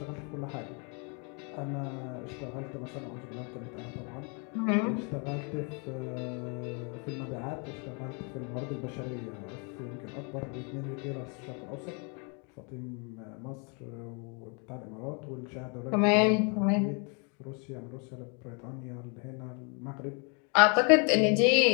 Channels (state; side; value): quieter; right; 35.4 dB